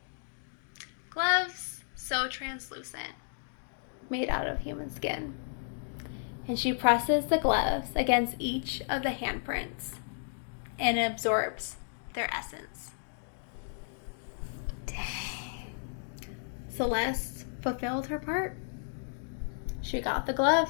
Gloves so translucent, made out of human skin. And she presses the gloves against each of the handprints and it absorbs their essence. Dang. Celeste fulfilled her part. She got the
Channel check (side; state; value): right; silent; digital silence